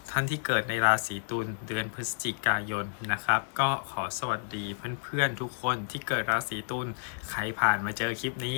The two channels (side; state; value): right; silent; digital silence